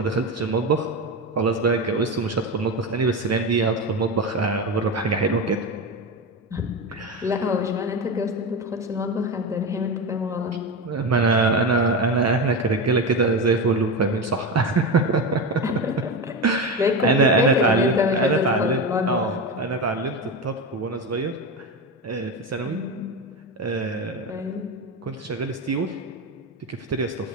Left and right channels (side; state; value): both; normal; correlation 0.19